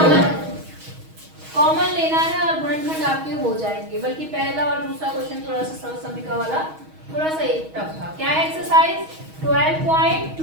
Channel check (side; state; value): left; late; 6.3 ms